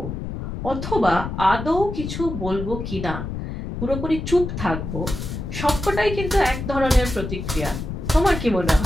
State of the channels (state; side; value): noise; left; rumble, 6 dB below the sound